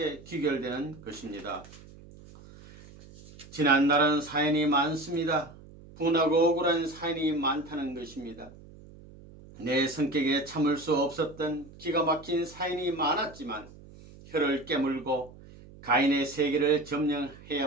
귀결되는 것입니다. 지난날은 사연이 많습니다. 분하고 억울한 사연이 많다는 것입니다. 내 성격에 참을 수 없었던 기가 막힌 사연이 많았지만 혀를 깨물고 가인의 세계를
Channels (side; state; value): right; noise; hum, 20 dB below the sound